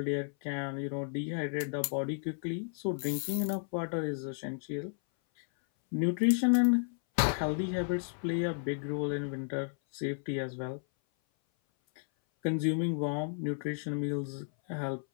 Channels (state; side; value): silent; right; 56 dB below the other